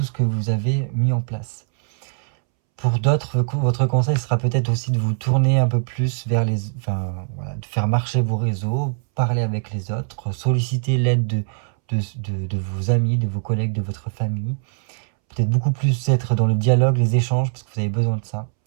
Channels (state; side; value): silent; left; 65 dB below the other